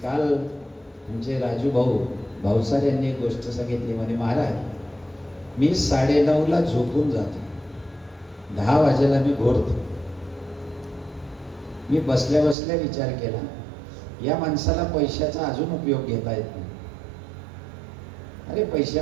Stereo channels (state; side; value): drops out; left; at 12.6 s